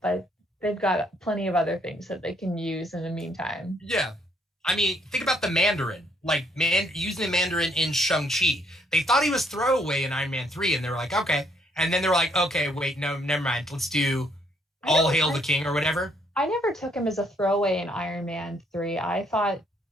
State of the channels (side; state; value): both; normal; correlation 0.68